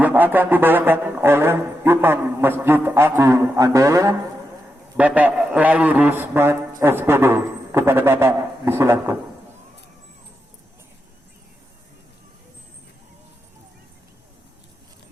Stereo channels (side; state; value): both; normal; correlation 0.86